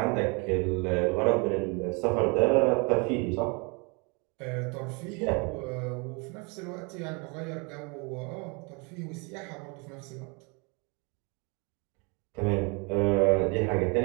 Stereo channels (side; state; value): left; quieter; 31.4 dB